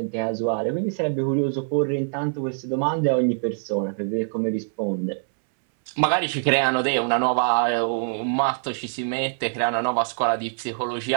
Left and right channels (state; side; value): silent; left; 61 dB below the other